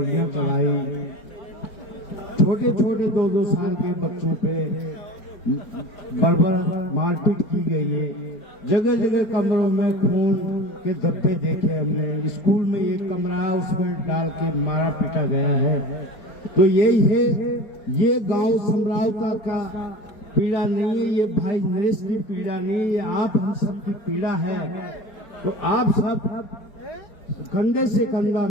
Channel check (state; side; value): late; right; 4.7 ms